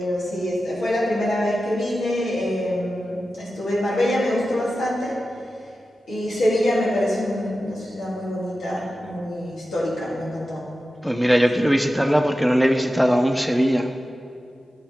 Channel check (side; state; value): both; normal; correlation 0.93